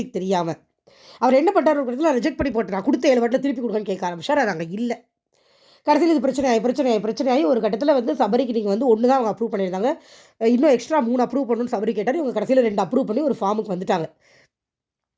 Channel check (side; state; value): both; identical; correlation 1.00